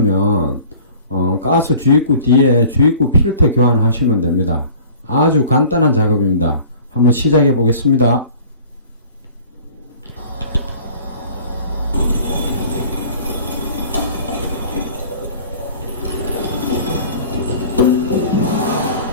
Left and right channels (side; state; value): both; inverted; correlation -0.46